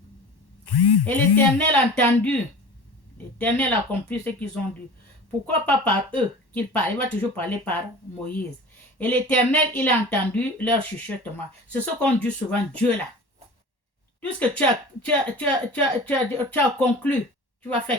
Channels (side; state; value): right; late; 1.1 ms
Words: Et l'Éternel a entendu. L'Éternel a accompli ce qu'ils ont dit. Pourquoi pas par eux qu'il parle? Il va toujours parler par Moïse. Et l'Éternel, il a entendu leur chuchotement. C'est ce qu'on dit souvent, Dieu là. Tout ce que tu as conclu, tu vas